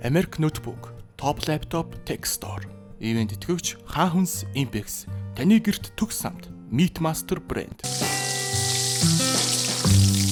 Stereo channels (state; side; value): identical; both; correlation 1.00